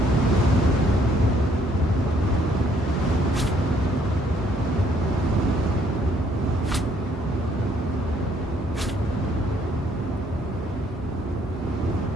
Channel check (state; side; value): normal; both; correlation 0.65